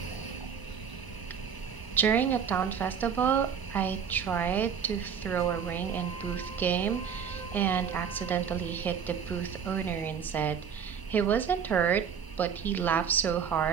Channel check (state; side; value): quieter; left; 7.3 dB